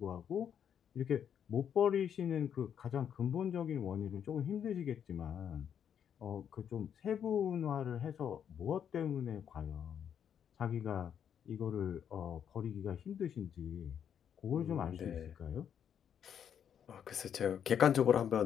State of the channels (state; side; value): quieter; right; 8.6 dB